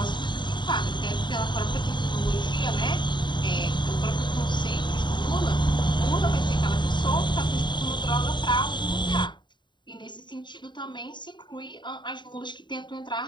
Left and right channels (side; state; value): right; late; 0.22 ms